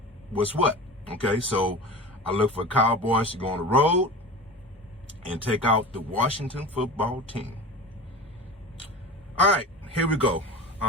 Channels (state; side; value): normal; both; correlation 0.33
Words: what's what. Okay, so I look for Cowboys to go on the road and take out the Washington football team. All right, here we go.